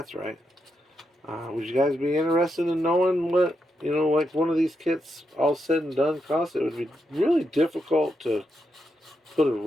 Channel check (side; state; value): both; normal; correlation 0.83